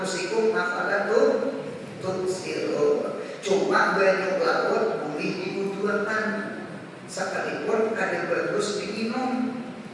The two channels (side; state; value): both; identical; correlation 1.00